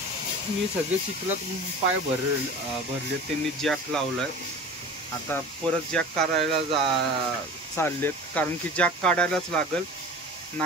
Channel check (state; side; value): normal; both; correlation 0.37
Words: मी सगळे चिखलात पाय भरले, त्यांनी जॅक लावलाय। आता परत जॅक काढायला चाललेत, कारण की जॅक काढायलाच लागल।